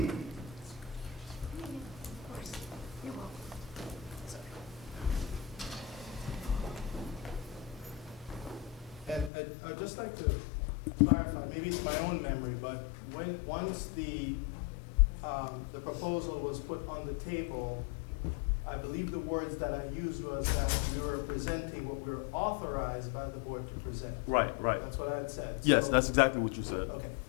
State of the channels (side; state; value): right; drops out; at 9.3 s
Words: And I'd just like to clarify, maybe it's my own memory, but once the proposal was put on the table, I believe the words that I used was that we were presenting what we were authorized by the board to present. Right, right. That's what I had said. Yes, So- that's exactly what you said. Okay,